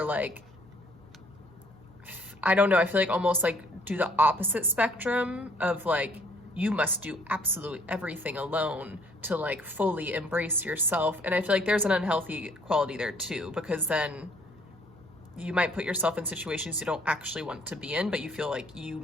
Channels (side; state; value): both; normal; correlation 0.62